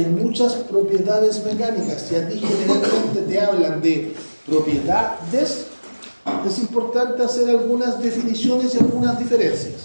muchas propiedades mecánicas, y a ti generalmente te hablan de propiedades, es importante hacer algunas definiciones y algunas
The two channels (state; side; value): inverted; both; correlation -1.00